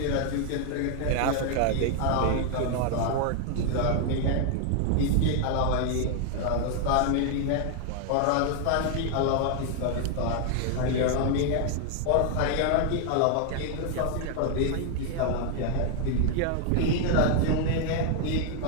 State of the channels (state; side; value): different; both; correlation 0.00